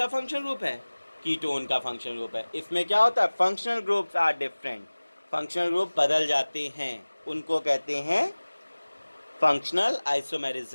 फंक्शन ग्रुप है, कीटोन का फंक्शन ग्रुप है। इसमें क्या होता है, functional groups are different, functional group बदल जाते हैं, उनको कहते हैं फंक्शनल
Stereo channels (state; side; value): inverted; both; correlation -1.00